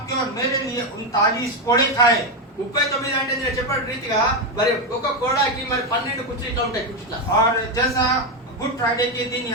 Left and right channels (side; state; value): both; normal; correlation 0.08